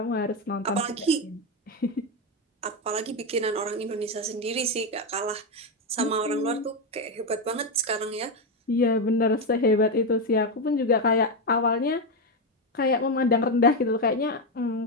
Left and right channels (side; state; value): both; normal; correlation 0.08